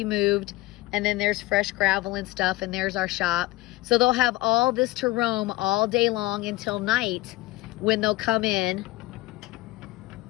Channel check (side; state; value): right; quieter; 19.8 dB